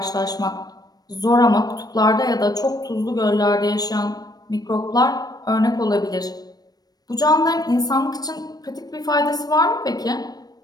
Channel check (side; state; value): right; late; 0.19 ms